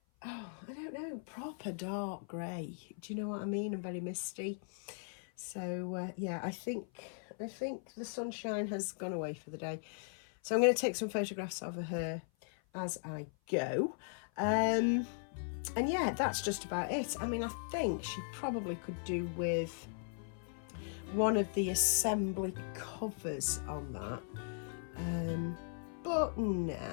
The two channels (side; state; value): right; silent; 52 dB below the other